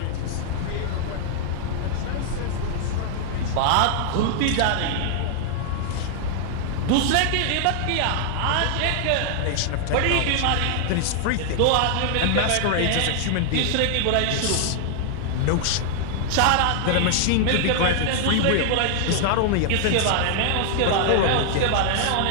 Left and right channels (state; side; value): different; both; correlation 0.00